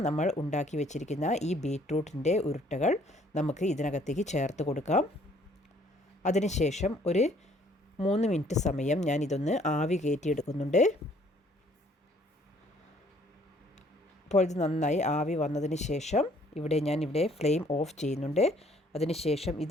നമ്മൾ ഉണ്ടാക്കി വെച്ചിരിക്കുന്ന ഈ ബീറ്റ്റൂട്ടിൻ്റെ ഉരുട്ടകൾ നമുക്ക് ഇതിനകത്തേക്ക് ചേർത്ത് കൊടുക്കാം. അതിനുശേഷം ഒരു 3 മിനിറ്റ് സമയം ഞാൻ ഇതൊന്ന് ആവി കയറ്റിയെടുക്കുന്നുണ്ട്. അപ്പോൾ ഇത് നന്നായി ആവി വന്നതിന് ശേഷം ഇവിടെ ഫ്ലെയിം ഓഫ് ചെയ്യുന്നുണ്ട്. അതിനുശേഷം ഇത്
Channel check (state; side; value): normal; both; correlation 0.61